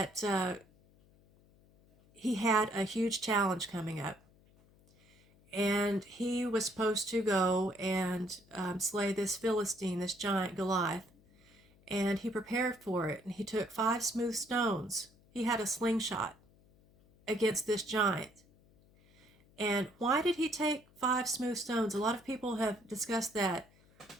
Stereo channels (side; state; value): left; noise; hum, 29 dB below the sound